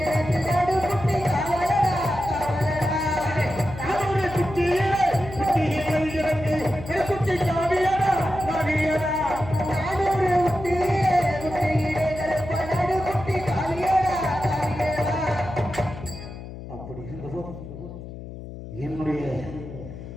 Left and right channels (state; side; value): noise; left; hum, 12 dB below the sound